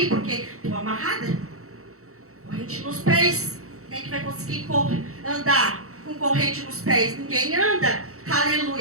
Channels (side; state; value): left; late; 0.64 ms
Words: porque estou amarrada. Corrente nos pés. Quem que vai conseguir andar com corrente nos pés? Ninguém anda.